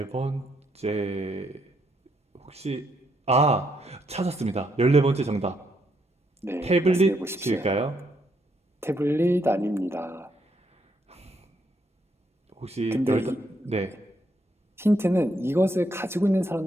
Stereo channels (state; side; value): normal; both; correlation 0.75